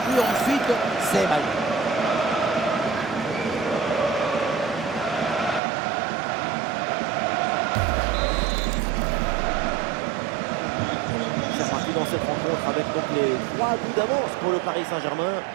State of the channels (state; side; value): drops out; left; at 5.6 s